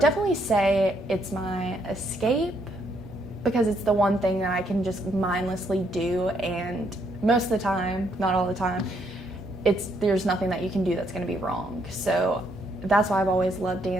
say it's my escape because it's the one thing that I can just mindlessly do, and most of the time, not all the time, there's nothing that you can do that's going to be wrong. So that's why I've always loved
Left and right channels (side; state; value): both; normal; correlation 0.72